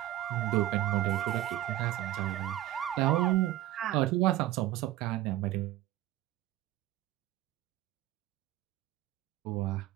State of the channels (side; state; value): left; quieter; 14.6 dB